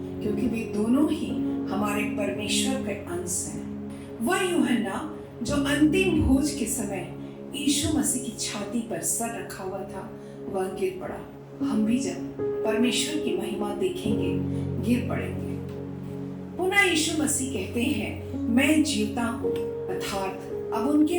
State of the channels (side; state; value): both; identical; correlation 1.00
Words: क्योंकि वे दोनों ही हमारे परमेश्वर के अंश हैं। वह यूहन्ना जो अंतिम भोज के समय यीशु मसीह की छाती पर सर रखा हुआ था, वह गिर पड़ा। हम भी जब परमेश्वर की महिमा देखेंगे गिर पड़ेंगे। पुनः यीशु मसीह कहते हैं, मैं जीवता हूँ, अर्थात अब